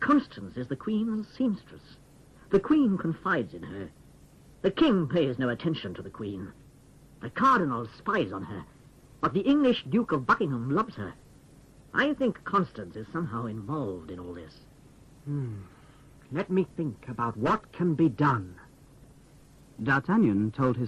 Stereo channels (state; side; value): identical; both; correlation 1.00